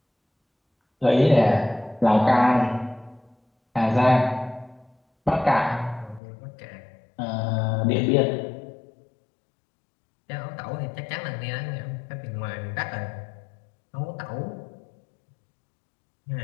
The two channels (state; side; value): drops out; right; at 6.2 s